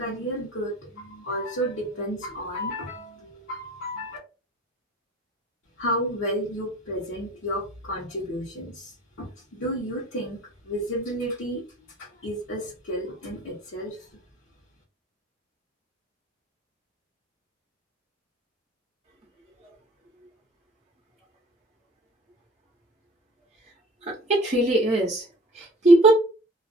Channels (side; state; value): both; normal; correlation 0.46